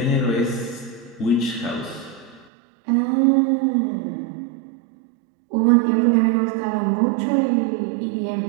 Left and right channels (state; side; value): drops out; left; at 2.5 s